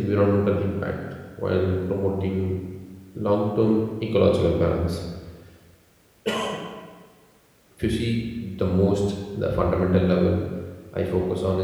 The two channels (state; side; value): identical; both; correlation 1.00